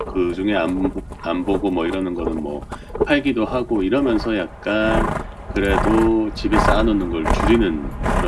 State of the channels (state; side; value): identical; both; correlation 1.00